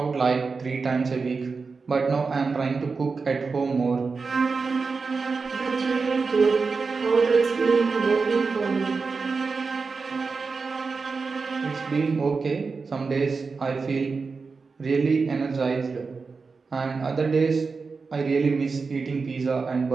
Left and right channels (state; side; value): quieter; left; 4.6 dB